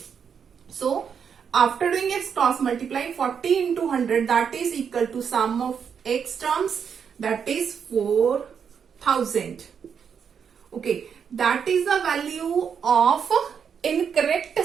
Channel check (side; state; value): left; quieter; 7.1 dB